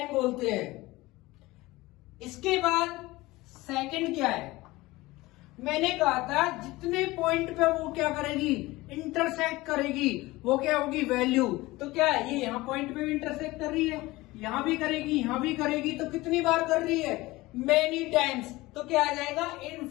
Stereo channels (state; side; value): quieter; right; 19.9 dB